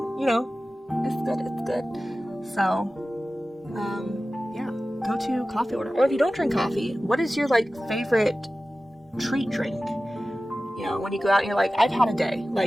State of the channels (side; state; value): both; normal; correlation 0.96